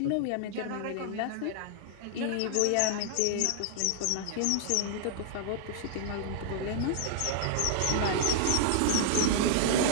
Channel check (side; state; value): both; different; correlation -0.01